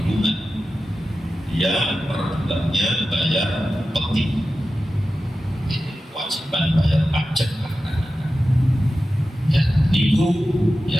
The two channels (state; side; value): normal; both; correlation 0.93